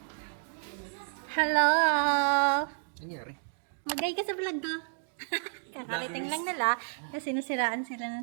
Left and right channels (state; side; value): silent; left; digital silence